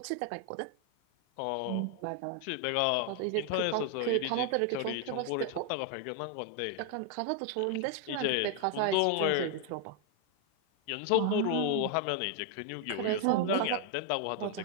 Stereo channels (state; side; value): different; both; correlation 0.00